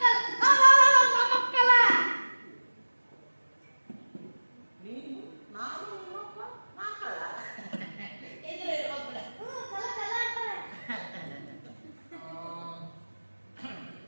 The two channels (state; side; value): inverted; both; correlation -1.00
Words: ಕಳ್ಳ. ನೀನು ನಾನು ನಿಮ್ಮಪ್ಪ ನಾ ಕಳ್ಳ. ಇದ್ರೆ ಇರ್ಬೇಕು ಬಿಡ. ಕಳ್ಳ ಕಳ್ಳ ಅಂತಾರೆ.